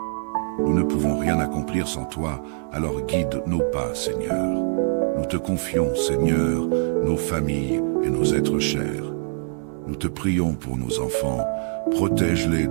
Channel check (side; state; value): left; silent; digital silence